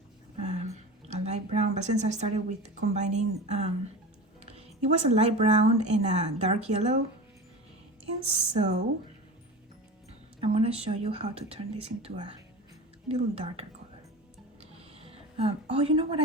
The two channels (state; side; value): normal; both; correlation 0.30